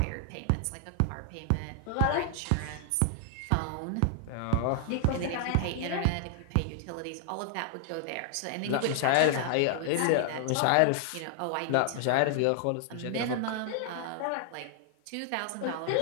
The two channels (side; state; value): both; different; correlation 0.00